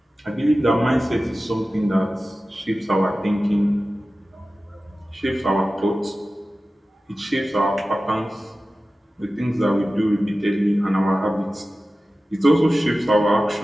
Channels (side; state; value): both; normal; correlation 0.95